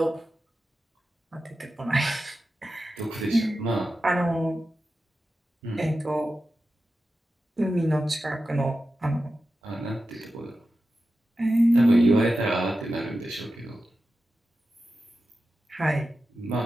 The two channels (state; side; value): normal; both; correlation 0.92